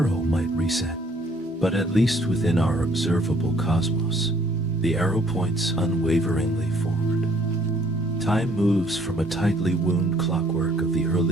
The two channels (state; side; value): normal; both; correlation 0.62